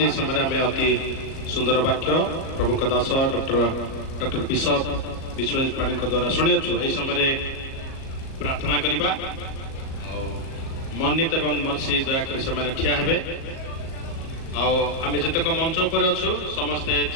समय में अति सुंदर वाक्य प्रभु का दास डॉक्टर बिशप विश्वजीत पाणी द्वारा शुणी यही समय प्रार्थना करवा मन्नित एवं मर्सी दयाकोरी से ठिया हेबे आम जितक मंच उपर अच्छु समस्ते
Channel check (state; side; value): late; right; 37 ms